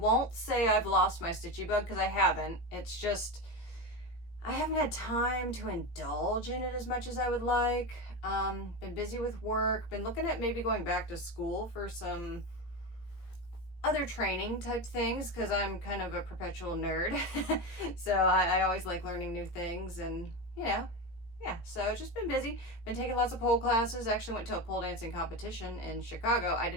say I've lost my stitchy bug because I haven't. It's just I haven't had time to indulge in it as much as I would like. Been busy with work. Been looking at maybe going back to school for some other training type things because I'm kind of a perpetual nerd. So I always like learning new things, and yeah, so it's just been busy. Been taking lots of pole classes. Actually went to a pole dancing competition in Chicago. I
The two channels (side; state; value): right; late; 17 ms